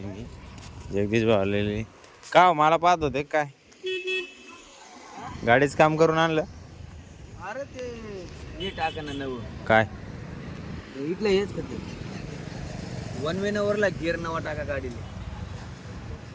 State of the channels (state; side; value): identical; both; correlation 1.00